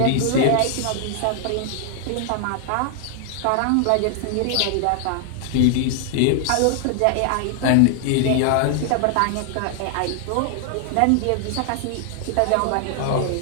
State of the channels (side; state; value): both; different; correlation 0.00